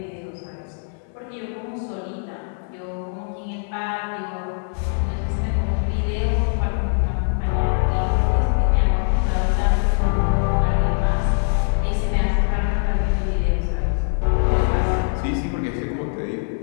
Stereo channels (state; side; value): silent; right; 64 dB below the other